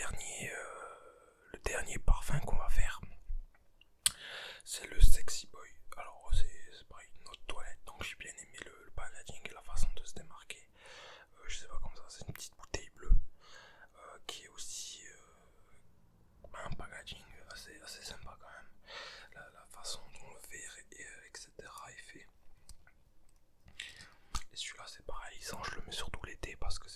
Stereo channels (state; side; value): identical; both; correlation 1.00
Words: dernier parfum qu'on va faire, c'est le Sexy Boy. Alors c'est pareil, une autre toilette, donc j'ai bien aimé le packaging et la façon de se démarquer. Je sais pas comme ça, c'est une petite bouteille bleue qui est aussi un packaging assez sympa quand même. La façon dont le verre etc. est fait. Et celui-là c'est pareil, je le mets surtout l'été parce que